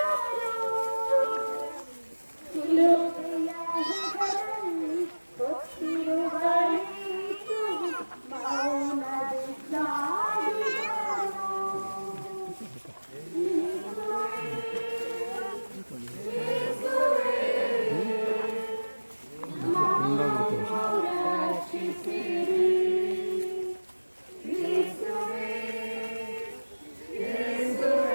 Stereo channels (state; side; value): inverted; both; correlation -1.00